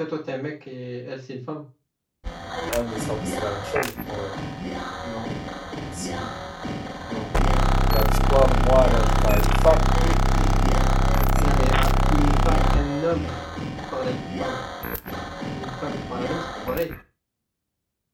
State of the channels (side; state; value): both; identical; correlation 1.00